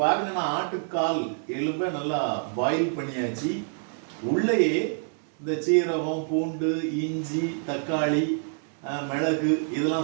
பாருங்க, நான் ஆட்டுக்கால் எலும்பை நல்லா பாயில் பண்ணியாச்சு. உள்ளேயே இந்த சீரகம், பூண்டு, இஞ்சி, தக்காளி, மிளகு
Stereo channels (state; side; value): silent; left; 60 dB below the other